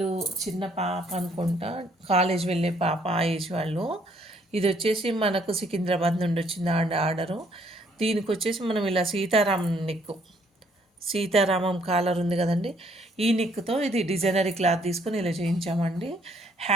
చిన్న పాప అనుకుంటా, కాలేజ్ వెళ్ళే పాప ఆ ఏజ్ వాళ్ళు. ఇది వచ్చేసి మనకు సికింద్రాబాద్ నుండి వచ్చింది ఆర్డరు. దీనికి వచ్చేసి మనం ఇలా సీతారామం కాలర్ ఉంది కదండి, ఈ నెక్తో ఇది డిజైనరీ క్లాత్ తీసుకొని ఇలా చేయించామండి.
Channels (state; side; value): normal; both; correlation 0.66